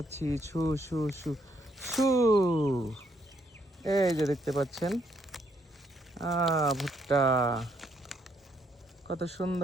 ছু ছু ছু ছু। এই যে দেখতে পাচ্ছেন ভুট্টা কত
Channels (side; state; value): both; normal; correlation 0.72